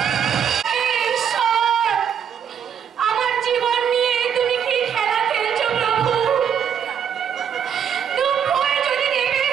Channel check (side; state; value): left; quieter; 8.2 dB